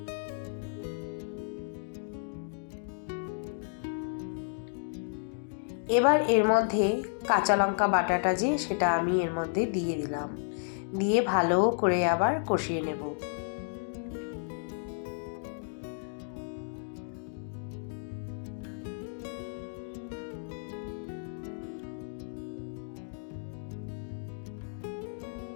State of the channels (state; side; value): silent; right; digital silence